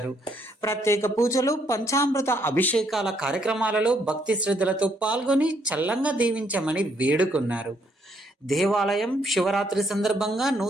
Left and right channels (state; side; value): normal; both; correlation 0.71